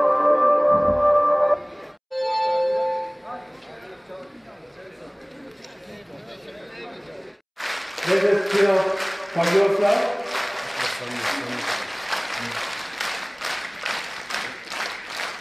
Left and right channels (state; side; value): identical; both; correlation 1.00